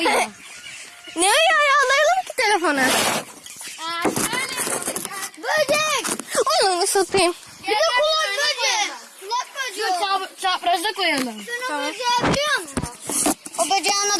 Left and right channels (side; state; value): both; identical; correlation 1.00